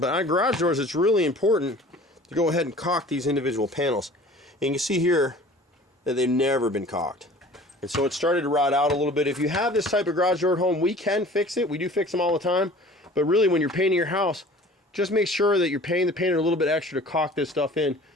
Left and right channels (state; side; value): normal; both; correlation 0.46